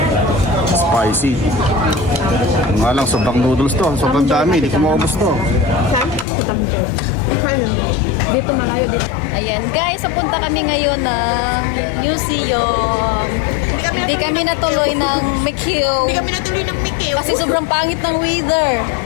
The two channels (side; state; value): right; drops out; at 6.2 s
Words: spicy. Nga lang sobrang noodles to. Sobrang dami, di ko maubos to. Dito malayo dito. Ayan guys, pupunta kami ngayon ng museum. Hindi kami natuloy ng Macau. Hindi kami natuloy ng Mickey. Kasi sobrang pangit ng weather.